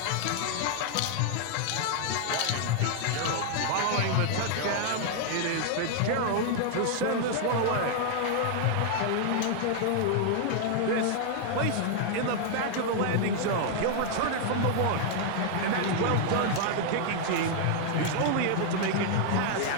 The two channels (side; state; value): both; different; correlation 0.00